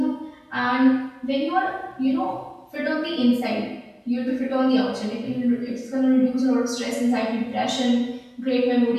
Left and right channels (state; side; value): identical; both; correlation 1.00